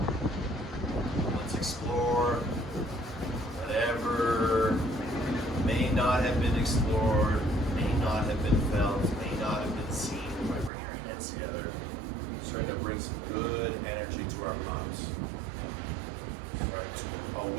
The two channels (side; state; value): left; drops out; at 10.7 s